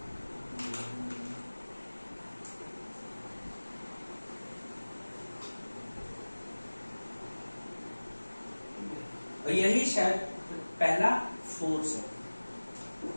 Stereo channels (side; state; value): both; inverted; correlation -1.00